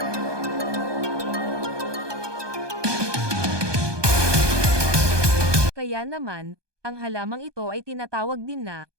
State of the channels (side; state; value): left; late; 1.2 ms